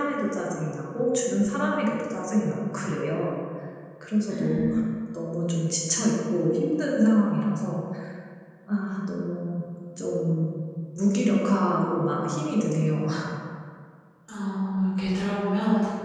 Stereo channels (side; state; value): both; identical; correlation 1.00